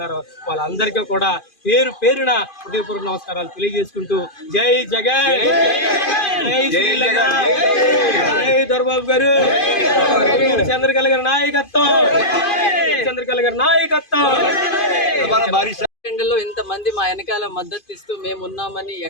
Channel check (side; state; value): right; late; 2.5 ms